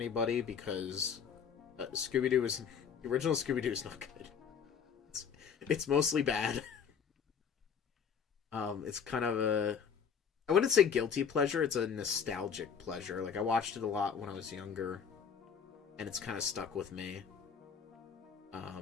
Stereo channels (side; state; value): right; quieter; 6.9 dB